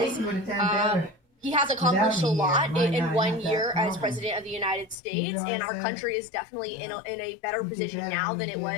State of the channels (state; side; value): drops out; right; at 5.0 s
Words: he has accomplished a lot in 1 year as president of the United States, and our country is definitely in a better position now than it